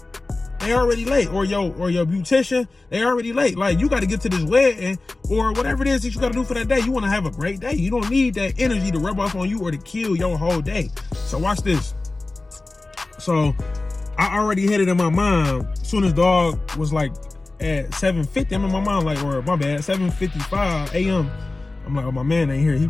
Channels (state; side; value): quieter; right; 3.2 dB